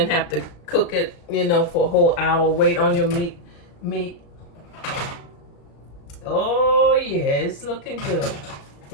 have to cook it, for a whole hour. Wait on your meat. Oh yeah, it's looking good.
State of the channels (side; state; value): right; late; 35 ms